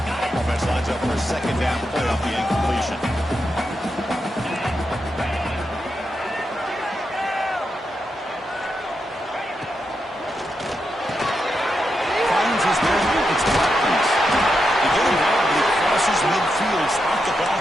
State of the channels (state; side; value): normal; both; correlation 0.85